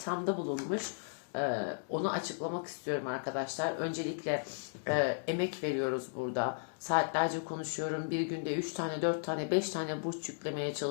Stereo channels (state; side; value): silent; right; digital silence